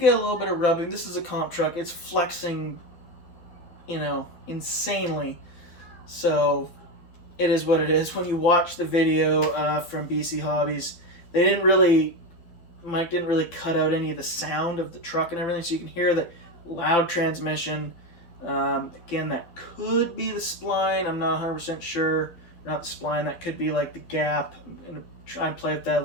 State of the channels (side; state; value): right; late; 12 ms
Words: a little bit of rubbing. This is a comp truck. It's flexing, insanely. So it is what it is. When you watch the video from BC Hobbies, Mike didn't really cut out any of the sound of the truck and everything, so you can hear the loud transmission. Again, that could be the spline. I'm not 100% sure. Not the spline. That could be like the gap. I'm going to try and play with that a